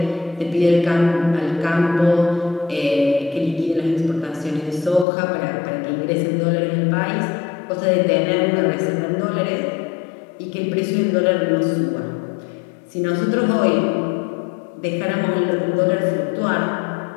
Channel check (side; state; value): right; drops out; at 5.1 s